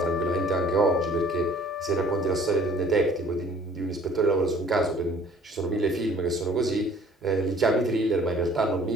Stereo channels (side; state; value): both; normal; correlation 0.54